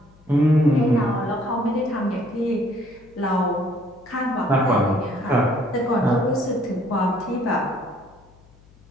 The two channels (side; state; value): left; noise; hum, 28 dB below the sound